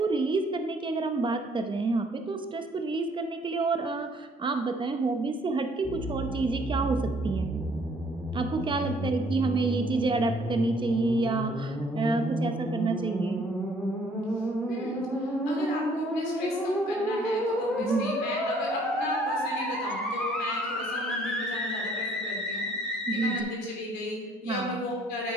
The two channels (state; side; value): normal; both; correlation 0.61